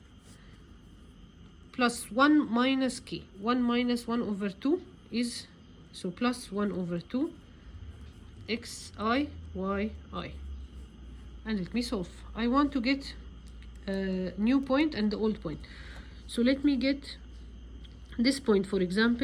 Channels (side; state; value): both; identical; correlation 1.00